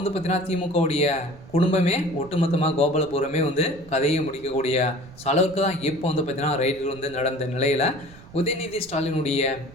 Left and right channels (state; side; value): noise; right; rumble, 20 dB below the sound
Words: திமுகவுடைய குடும்பமே ஒட்டுமொத்தமாக கோபாலபுரமே கதையை முடிக்கக்கூடிய அளவுக்கு தான் இப்போ பார்த்தீங்கன்னா ரைடுகள் நடந்த நிலையில் உதயநிதி ஸ்டாலினுடைய